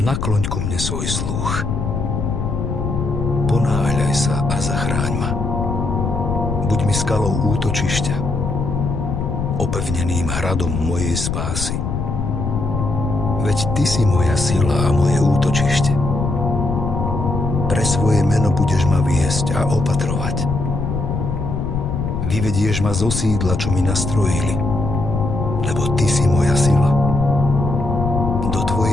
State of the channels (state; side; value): noise; left; rumble, 2 dB below the sound